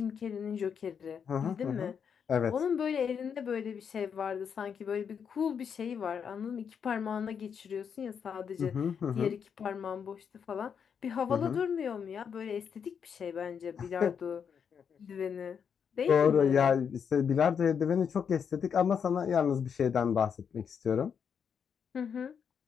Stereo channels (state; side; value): quieter; right; 7.1 dB